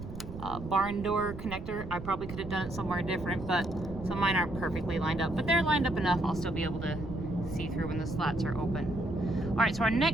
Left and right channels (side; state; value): right; noise; rumble, 11 dB below the sound